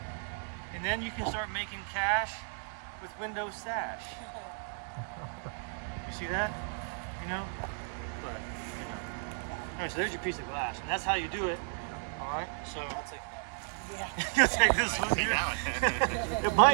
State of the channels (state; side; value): silent; left; 55 dB below the other